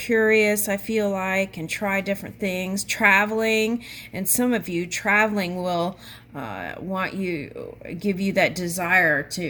I feel like, and try different things. Traveling, and some of you traveling will give you that desire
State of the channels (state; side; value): identical; both; correlation 1.00